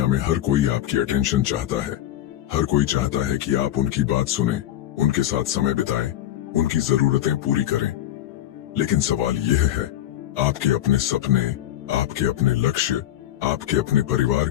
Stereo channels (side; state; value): right; quieter; 12.7 dB